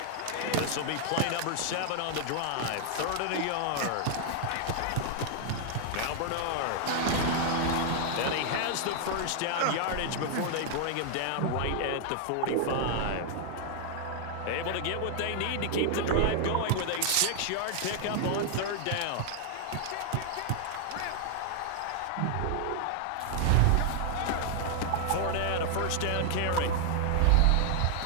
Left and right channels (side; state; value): both; different; correlation 0.00